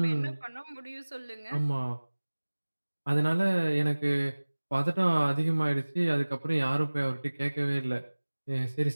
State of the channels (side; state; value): both; inverted; correlation -1.00